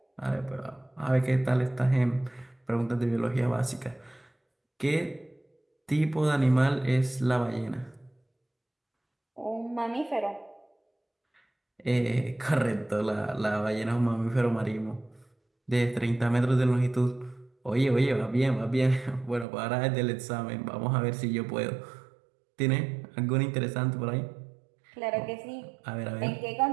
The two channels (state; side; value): drops out; left; at 19.5 s